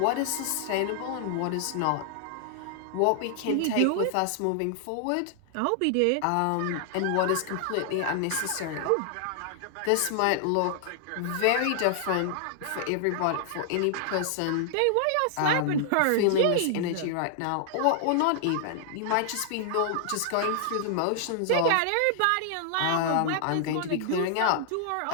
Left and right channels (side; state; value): both; different; correlation -0.01